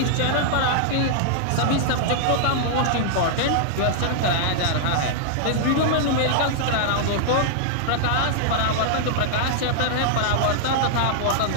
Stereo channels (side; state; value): both; different; correlation -0.01